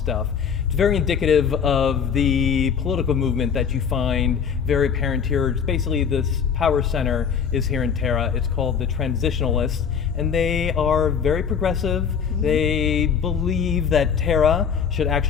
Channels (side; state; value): right; quieter; 7.0 dB